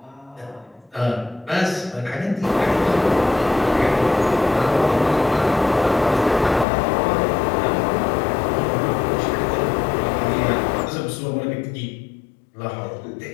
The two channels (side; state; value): right; drops out; at 6.7 s